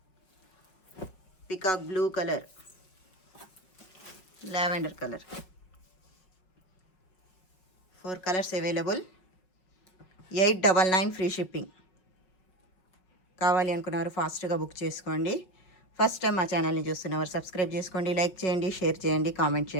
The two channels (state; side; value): late; right; 5.4 ms